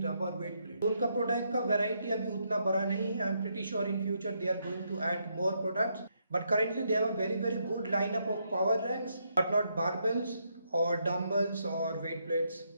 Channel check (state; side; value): inverted; both; correlation -0.77